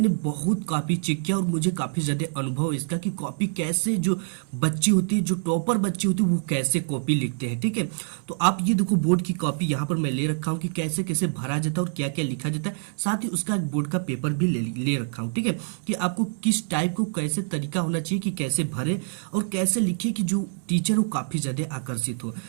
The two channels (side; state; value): left; silent; 61 dB below the other